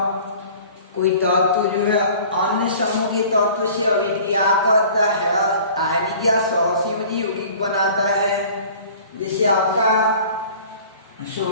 कोई तत्व जो है अन्य समूह के तत्व से अभिक्रिया करता है, आयनिक या सहसंयोजी यौगिक बनाता है। जैसे आपका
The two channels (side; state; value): both; inverted; correlation -0.46